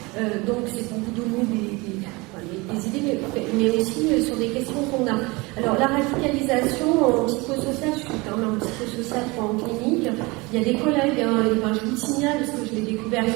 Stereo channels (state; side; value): quieter; left; 24.7 dB